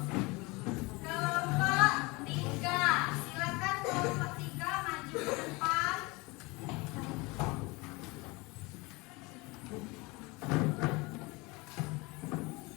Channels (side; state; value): right; quieter; 24.9 dB